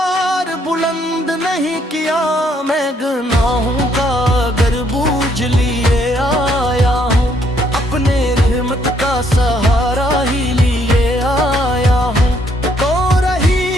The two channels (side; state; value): both; normal; correlation 0.69